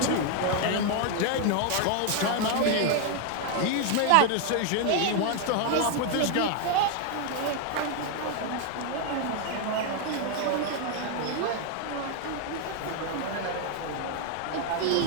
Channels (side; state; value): both; different; correlation 0.00